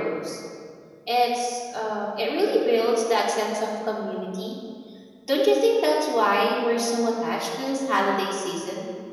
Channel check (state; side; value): identical; both; correlation 1.00